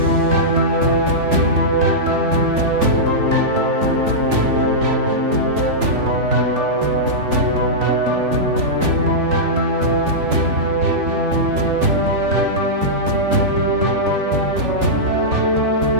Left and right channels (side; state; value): left; late; 3.4 ms